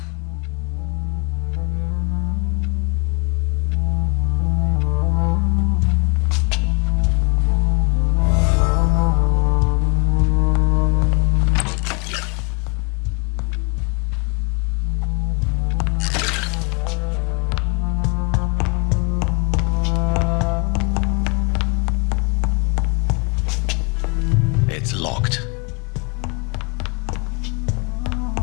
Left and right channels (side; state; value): right; quieter; 31.2 dB